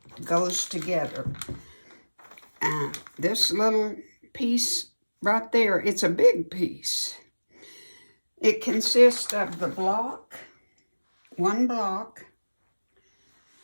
goes together. This little piece right there, it's a big piece. It consists of the block, one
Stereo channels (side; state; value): both; inverted; correlation -1.00